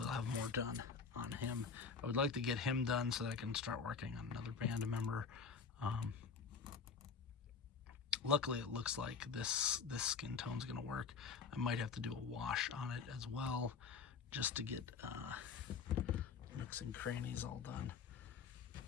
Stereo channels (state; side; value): quieter; right; 5.6 dB